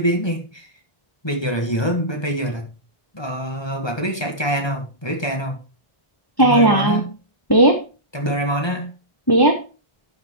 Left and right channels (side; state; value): right; late; 1.2 ms